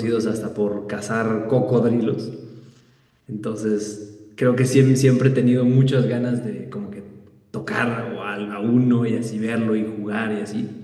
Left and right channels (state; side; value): identical; both; correlation 1.00